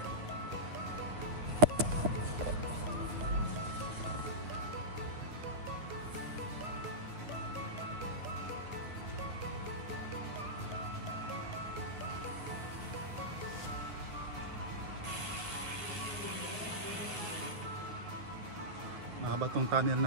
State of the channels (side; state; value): left; late; 9.9 ms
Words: Mahaba tong tunnel